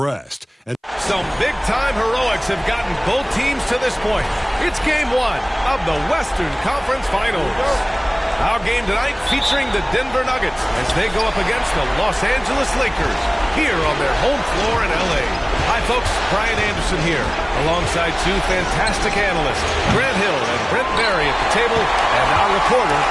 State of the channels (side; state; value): both; identical; correlation 1.00